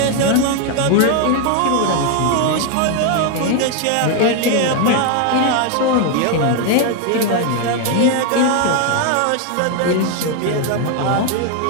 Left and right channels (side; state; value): both; different; correlation 0.01